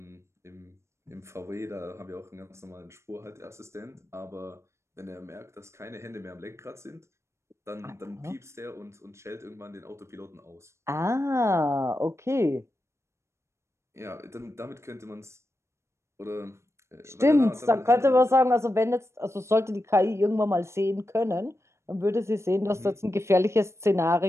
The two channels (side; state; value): left; late; 0.13 ms